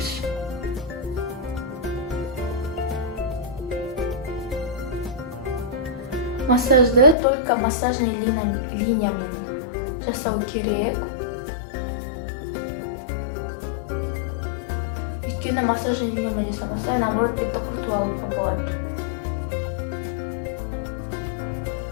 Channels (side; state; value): right; drops out; at 7.2 s